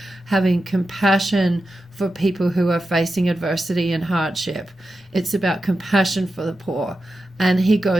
having compassion for people who are facing adversity and hardship. It's about compassion for the poor. And he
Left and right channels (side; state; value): both; normal; correlation 0.91